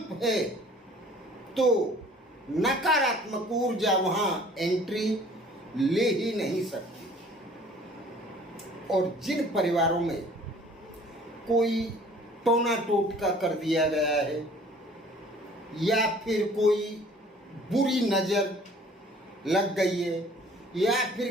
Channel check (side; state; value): both; normal; correlation 0.52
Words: है तो नकारात्मक ऊर्जा वहाँ एंट्री ले ही नहीं सकती। और जिन परिवारों में कोई टोना टोटका कर दिया गया है या फिर कोई बुरी नज़र लग गई है या